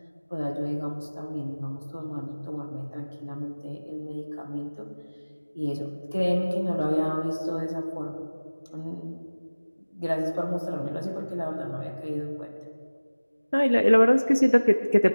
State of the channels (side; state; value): both; inverted; correlation -1.00